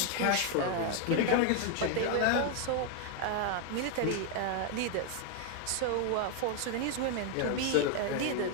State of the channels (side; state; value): both; different; correlation 0.01